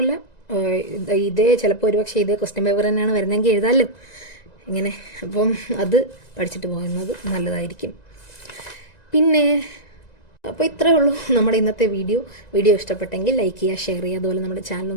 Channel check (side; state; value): right; late; 1.9 ms